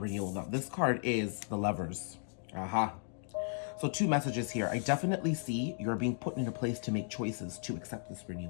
renewal. Now, this card is the Lovers. Aha. So two messages here. I definitely see you're being put in a place to make choices to accept this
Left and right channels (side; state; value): right; silent; digital silence